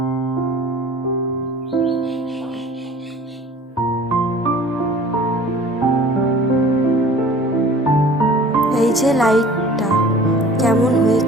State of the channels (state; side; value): normal; both; correlation 0.46